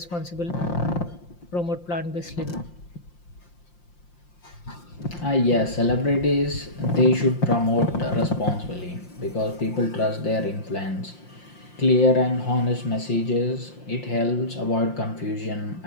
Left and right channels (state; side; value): late; right; 5.7 ms